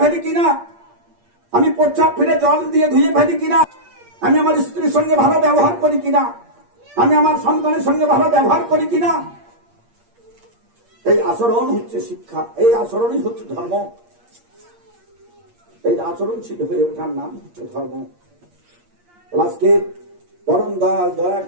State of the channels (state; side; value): late; left; 8.6 ms